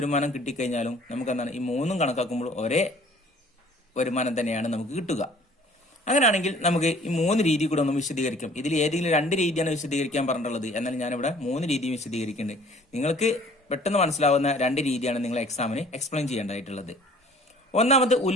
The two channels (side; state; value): both; normal; correlation 0.53